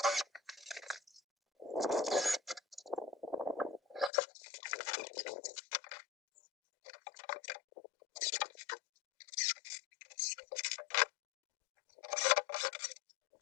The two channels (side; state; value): right; drops out; at 4.1 s